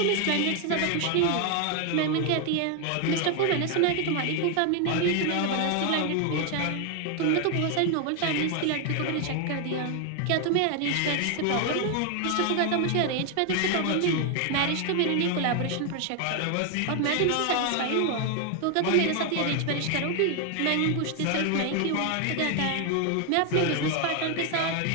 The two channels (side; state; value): both; different; correlation 0.01